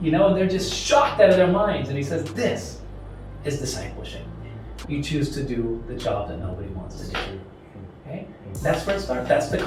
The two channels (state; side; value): identical; both; correlation 1.00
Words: and they're just shocked out of their minds. And he says, this is discipleship. You choose to do the job that nobody wants to do. Okay? That's where it starts. That's the